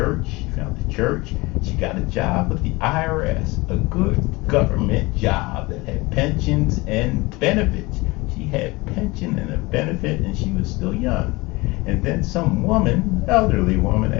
She found the church. She got a job with the IRS, a good government job that had pensions and benefits. She had pension and a benefit, and she was still young. And then some woman, elderly woman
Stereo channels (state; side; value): quieter; right; 23.0 dB